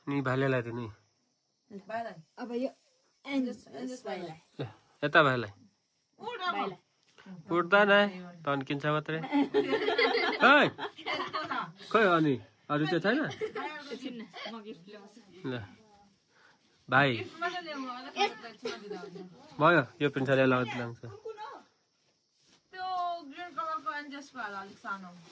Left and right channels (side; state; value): both; identical; correlation 1.00